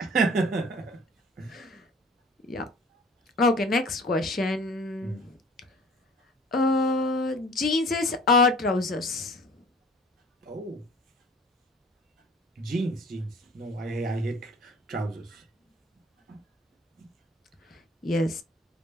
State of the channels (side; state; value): both; normal; correlation 0.49